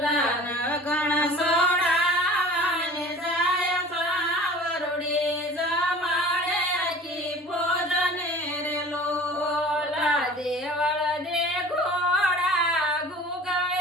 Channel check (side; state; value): both; normal; correlation 0.43